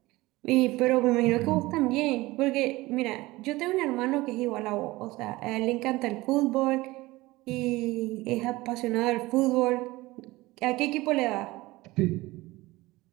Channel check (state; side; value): quieter; left; 19.9 dB